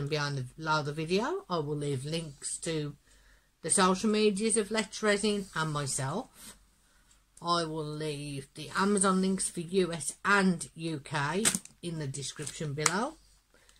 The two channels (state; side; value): identical; both; correlation 1.00